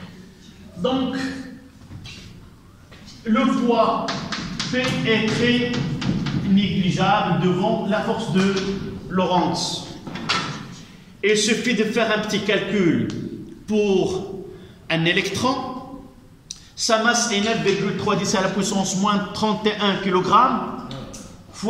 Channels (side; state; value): both; identical; correlation 1.00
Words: Donc, le poids P est très négligeable devant la force de Lorentz. Il suffit de faire un petit calcul pour un électron. Sa masse est 9,3 à la puissance moins 31 kg